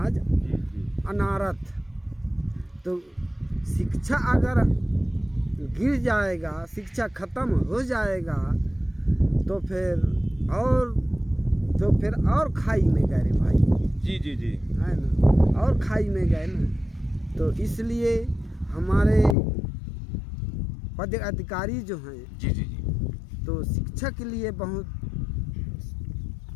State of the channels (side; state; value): right; drops out; at 19.4 s